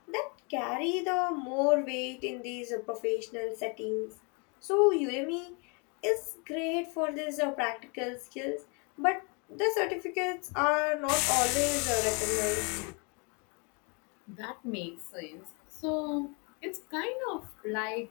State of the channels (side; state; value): right; quieter; 33.6 dB